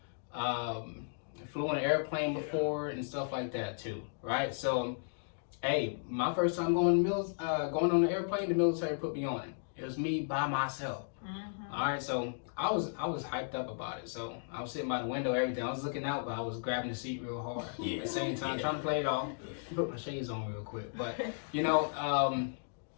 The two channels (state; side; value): silent; right; digital silence